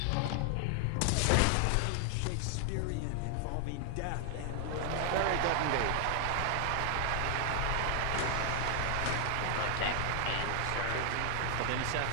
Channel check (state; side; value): different; both; correlation 0.00